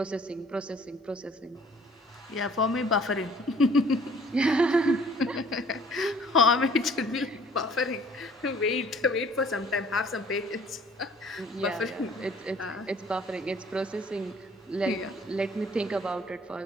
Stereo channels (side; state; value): both; normal; correlation 0.55